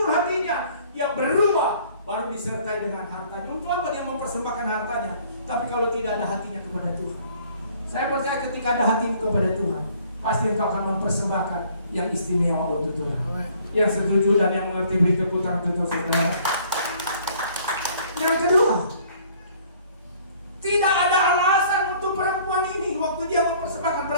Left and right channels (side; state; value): both; inverted; correlation -0.57